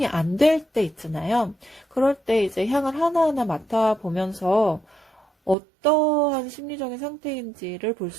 안 될 때 있잖아요. 그럴 때 이제 향을 하나하나 맡아보면서 어떠한 심리적인 상태인지를 볼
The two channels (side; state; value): left; drops out; at 5.6 s